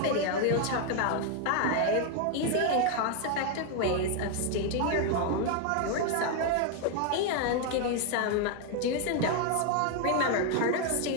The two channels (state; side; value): different; both; correlation 0.01